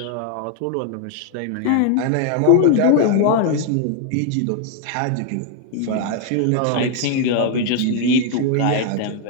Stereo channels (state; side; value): different; both; correlation 0.00